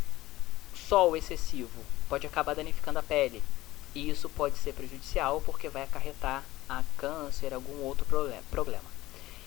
sol excessivo pode acabar danificando a pele, e isso pode ser prejudicial porque vai acarretar a câncer, algum outro problema.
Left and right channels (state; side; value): quieter; right; 17.4 dB